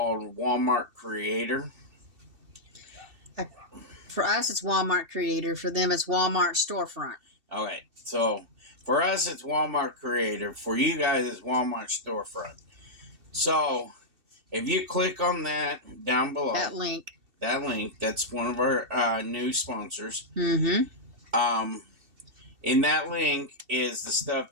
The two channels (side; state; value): left; late; 2.7 ms